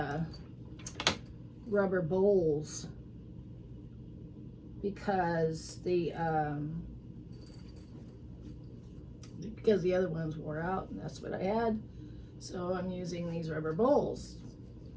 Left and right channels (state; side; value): identical; both; correlation 1.00